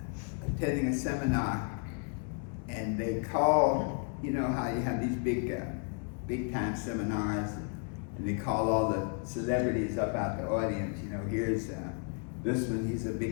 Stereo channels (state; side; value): quieter; right; 39.5 dB